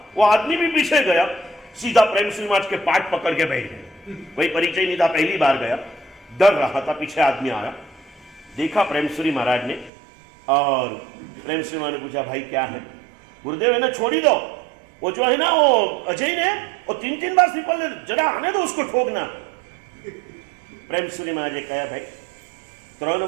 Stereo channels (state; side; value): drops out; left; at 9.9 s